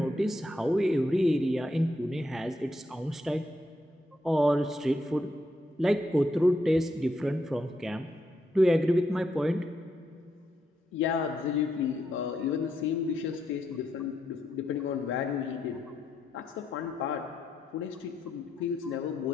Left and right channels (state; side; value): normal; both; correlation 0.80